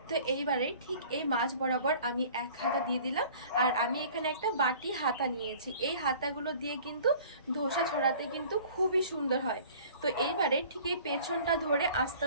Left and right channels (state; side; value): inverted; both; correlation -0.48